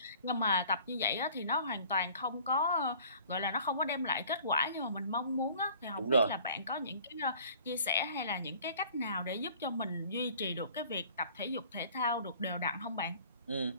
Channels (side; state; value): both; inverted; correlation -0.51